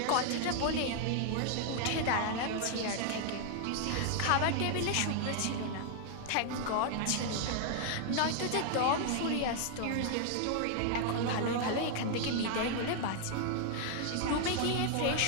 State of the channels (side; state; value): both; different; correlation 0.00